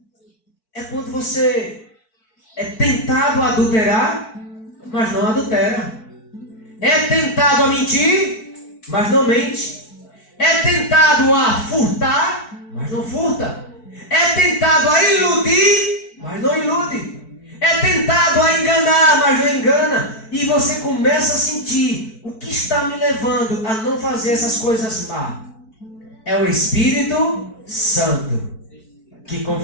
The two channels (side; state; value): right; late; 4.6 ms